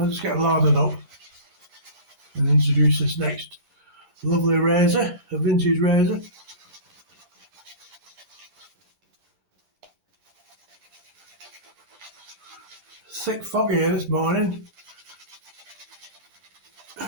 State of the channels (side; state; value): left; late; 10 ms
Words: just get loaded up and introduce this next lovely razor, a vintage razor. Thick fog here this morning.